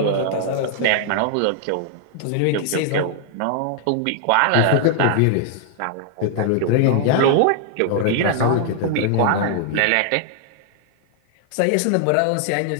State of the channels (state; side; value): different; both; correlation -0.01